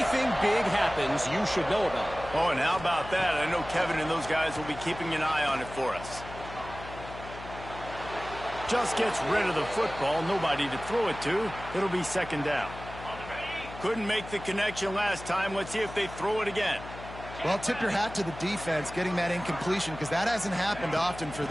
big happens, you should know about it. Oh, and how about that? I know Kevin and those guys will be keeping an eye on it for us. Just gets rid of the football, nobody to throw it to. It'll be second down. Couldn't make the connection last time. Let's see if they throw it again. Well, tip your hat to the defense getting that incompletion because that hasn't happened often for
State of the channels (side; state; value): left; noise; hum, 13 dB below the sound